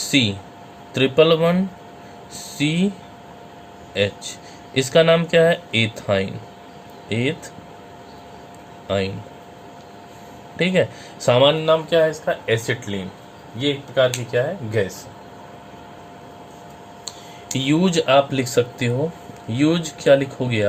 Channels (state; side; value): identical; both; correlation 1.00